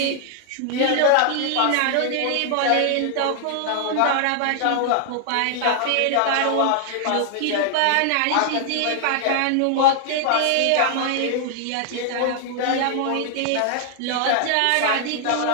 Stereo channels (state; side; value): different; both; correlation 0.00